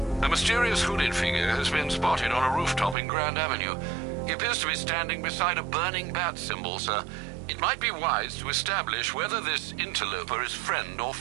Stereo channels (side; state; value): left; drops out; at 3.0 s